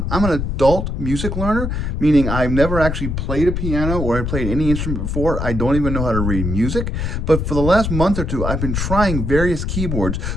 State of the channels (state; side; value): noise; left; rumble, 2 dB below the sound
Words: I'm an adult music learner, meaning I've never actually played a piano or I played any instrument before. I don't even know how to read music. But for the last month or two, I've been trying various keyboards,